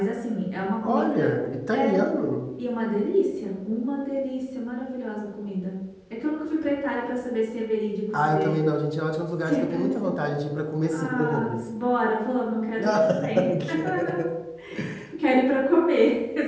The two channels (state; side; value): identical; both; correlation 1.00